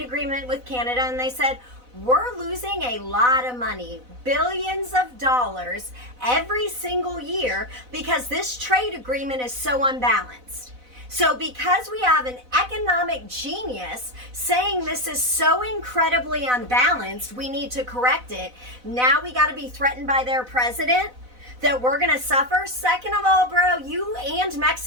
agreement with Canada, and they said, we're losing a lot of money, billions of dollars every single year because this trade agreement is so unbalanced. So because we have an economic genius saying this is so incredibly unbalanced, we need to correct it. Now we got to be threatened by their president that we're going to suffer. Second of all, bro, you and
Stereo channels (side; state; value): left; late; 4.0 ms